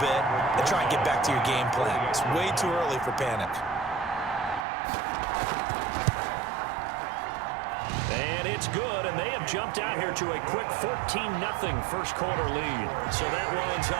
and try and get back to your game plan. It's way too early for panic. And it's good, and they have jumped out here to a quick 14-0 first quarter lead. So that lines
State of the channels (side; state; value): left; drops out; at 4.7 s